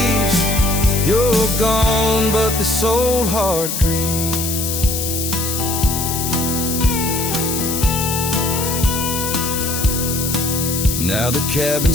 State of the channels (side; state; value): left; noise; hiss, 3 dB below the sound